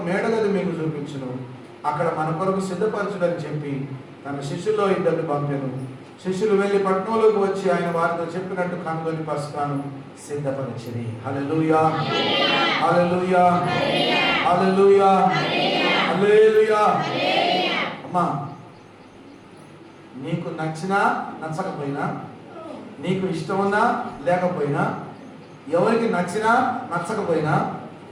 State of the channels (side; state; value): both; identical; correlation 1.00